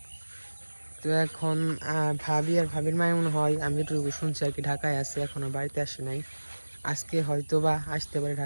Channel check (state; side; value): inverted; both; correlation -1.00